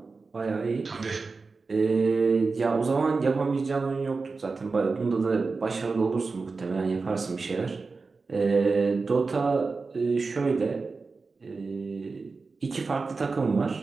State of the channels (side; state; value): left; quieter; 4.2 dB